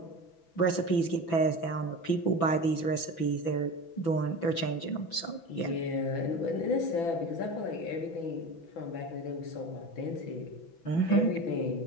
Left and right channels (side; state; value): right; late; 6.0 ms